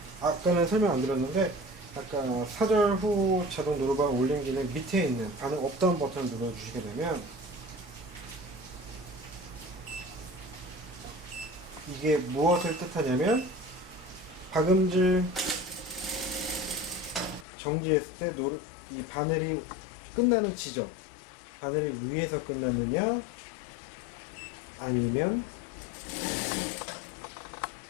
아까는 설명 안 드렸는데 아까 사절 후 자동 노루발 올림 기능 밑에 있는 반응 업다운 버튼을 눌러주시게 되면 이게 무엇을 뜻하냐면 박음질 정지했을 때 이 바늘이 끝나는 지점, 바늘이 위에서 끝나느냐 아니면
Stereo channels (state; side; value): drops out; right; at 17.4 s